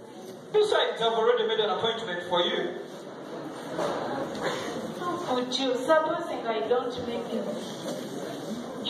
Besides, I've already made an appointment for you. Would you, supposing I don't make it?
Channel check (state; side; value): identical; both; correlation 1.00